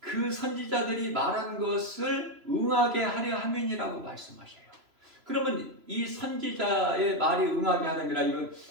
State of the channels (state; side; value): late; left; 3.0 ms